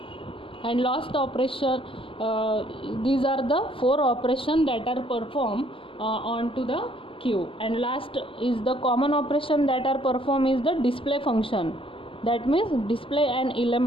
And last operation, these are the 4 operations that are performed onto the Q. And last is the common operation that are performed is the display function. That means display an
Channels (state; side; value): late; right; 0.25 ms